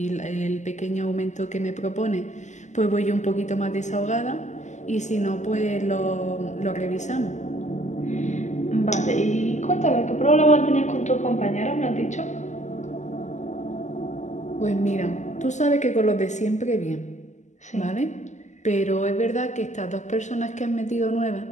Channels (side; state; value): right; late; 0.34 ms